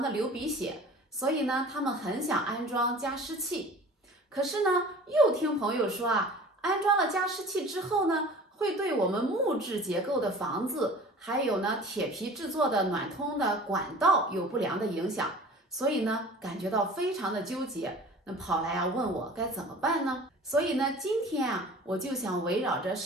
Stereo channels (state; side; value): normal; both; correlation 0.43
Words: 的流鼻血，所以呢他们很想安装加湿器。可是呢，又听朋友说安装了加湿器之后呢，会对我们木质结构的房子，还有呢铁皮制作的暖通的管道有不良的影响。所以呢，感觉到非常的纠结，那跑来问我该怎么办呢？所以呢，今天我就想围绕着